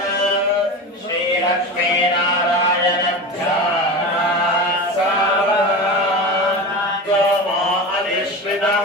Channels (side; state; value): both; normal; correlation 0.26